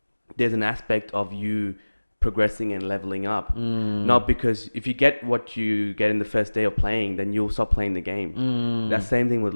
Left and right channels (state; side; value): inverted; both; correlation -1.00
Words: there's an aspect of you progressing and leveling up. Not because if you get what you get in the first day of playing, then you'll stop playing the game. That same thing with